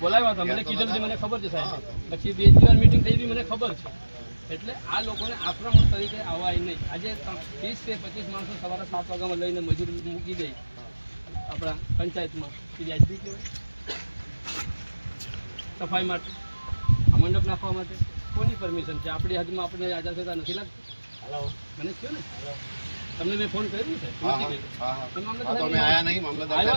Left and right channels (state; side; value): inverted; both; correlation -1.00